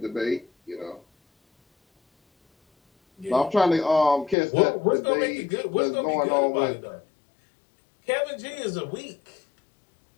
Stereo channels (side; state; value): right; drops out; at 4.4 s